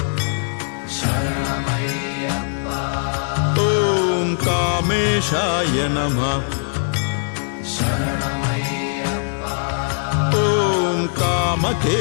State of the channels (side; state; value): right; silent; 65 dB below the other